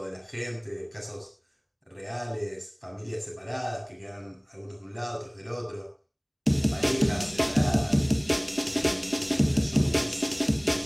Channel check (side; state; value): both; identical; correlation 1.00